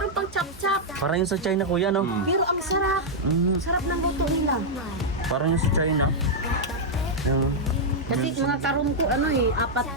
pang chop-chop. Parang yung sa China kuya, no? Pero ang sarap, sarap ng luto nila. Parang yung sa China. Yung... Kasi mga karon ko, ano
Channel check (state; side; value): normal; both; correlation -0.05